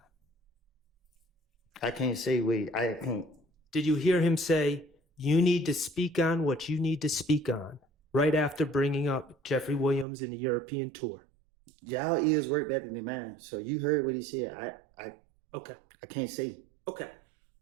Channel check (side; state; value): left; drops out; at 10.1 s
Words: I can't say I can't. Did you hear him say you need to speak on what you need to speak on right after bringing up Jeffrey Williams and the European tour? Y'all ears work better than mine. So you heard what he said. Okay. I can't say. Okay.